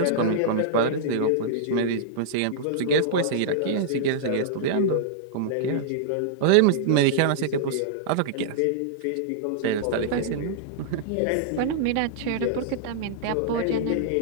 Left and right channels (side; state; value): both; different; correlation -0.02